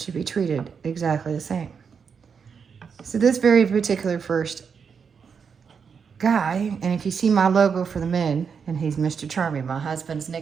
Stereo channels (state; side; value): quieter; left; 6.3 dB